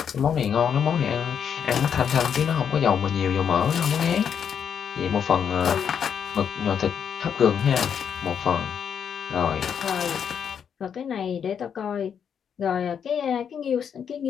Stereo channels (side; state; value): right; quieter; 7.7 dB